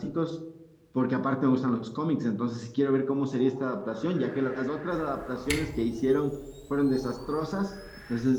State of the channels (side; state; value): both; identical; correlation 1.00